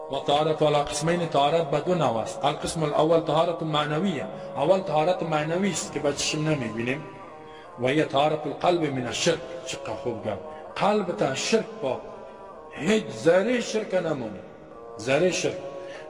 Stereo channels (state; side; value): identical; both; correlation 1.00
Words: وطهارة على قسمين، طهارت بدون نواس. القسم الأول طهارة معنوية. أول طهارت معنوی است که بچشم نمیبینیم و هي طهارة القلب من الشرك. چقدر خوب گفت. قلب تا شرک با هیچ ذره شرک نمونه. ذره شرک،